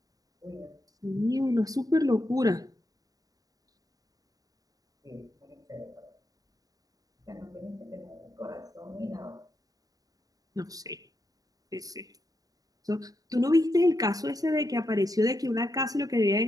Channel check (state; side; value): late; left; 0.18 ms